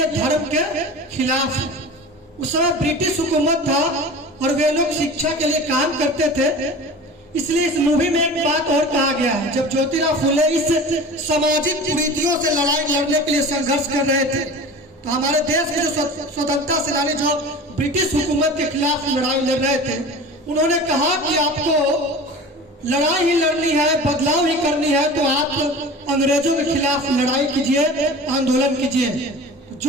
धर्म के खिलाफ है। उस समय ब्रिटिश हुकूमत था और वे लोग शिक्षा के लिए काम करते थे। इसलिए इस मूवी में एक बात और कहा गया है, जब ज्योतिराव फुले इस सामाजिक कुरीतियों से लड़ाई लड़ने के लिए संघर्ष कर रहे थे, तो हमारे देश के जो स्वतंत्रता सेनानी जो ब्रिटिश हुकूमत के खिलाफ लड़ाई लड़ रहे थे, उन्होंने कहा कि आपको लड़ाई ही लड़नी है, बदलाव ही करनी है, तो आप अंग्रेजों के खिलाफ लड़ाई कीजिए, आंदोलन कीजिए।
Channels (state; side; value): normal; both; correlation 0.36